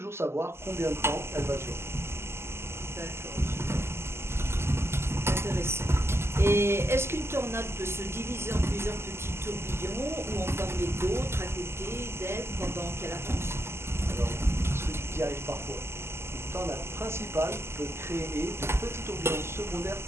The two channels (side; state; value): left; late; 0.12 ms